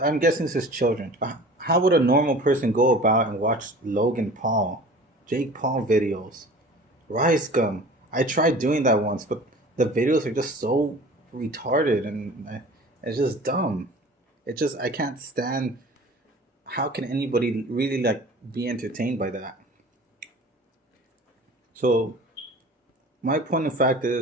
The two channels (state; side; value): normal; both; correlation 0.42